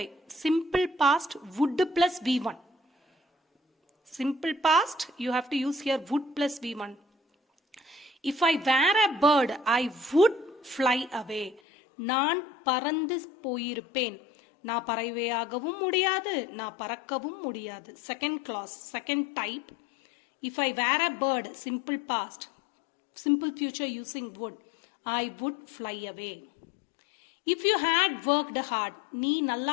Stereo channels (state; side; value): drops out; right; at 11.6 s